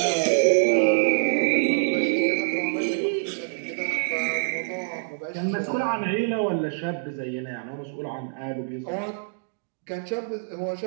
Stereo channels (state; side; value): silent; left; digital silence